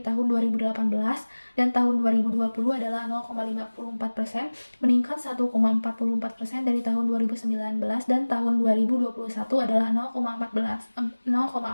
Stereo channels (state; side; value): inverted; both; correlation -1.00